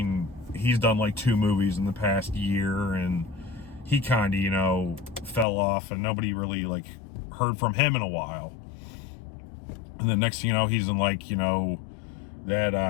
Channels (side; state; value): right; drops out; at 5.5 s